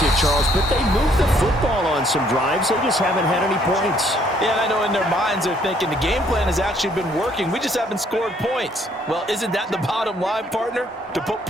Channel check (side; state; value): both; normal; correlation 0.65